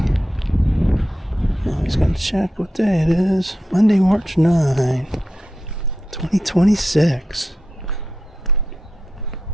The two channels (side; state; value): both; normal; correlation 0.87